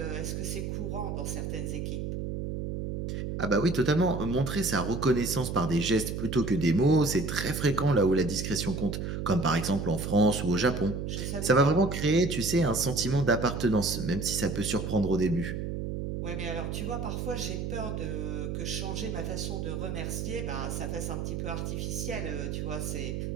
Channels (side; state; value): right; noise; hum, 4 dB below the sound